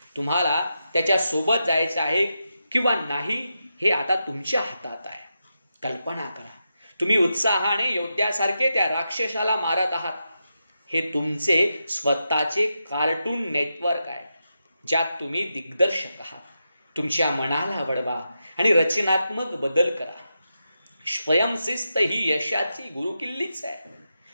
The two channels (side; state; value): both; inverted; correlation -0.87